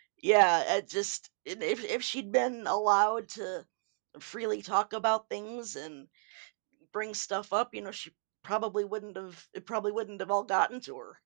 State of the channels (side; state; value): left; silent; 56 dB below the other